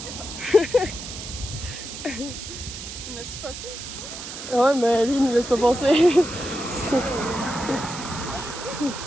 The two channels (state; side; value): noise; right; hiss, 9 dB below the sound